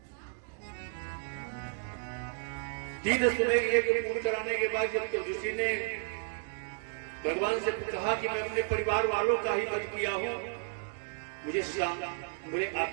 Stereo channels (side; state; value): left; silent; 56 dB below the other